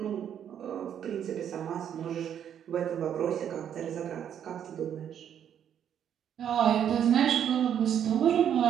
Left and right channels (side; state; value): left; quieter; 9.2 dB